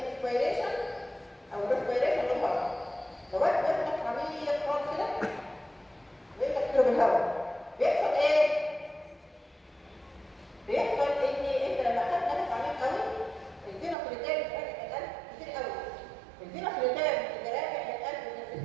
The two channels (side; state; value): left; drops out; at 14.0 s